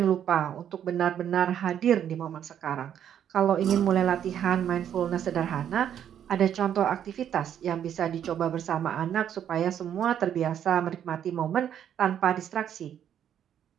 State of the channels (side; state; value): left; quieter; 9.6 dB